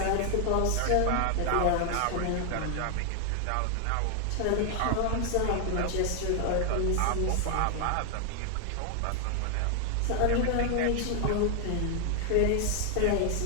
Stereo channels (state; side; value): different; both; correlation 0.00